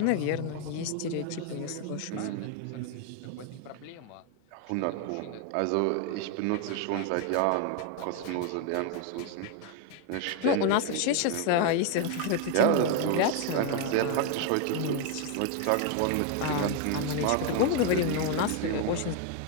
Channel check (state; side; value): different; both; correlation 0.01